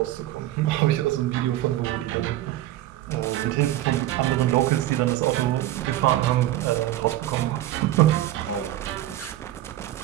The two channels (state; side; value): quieter; left; 14.3 dB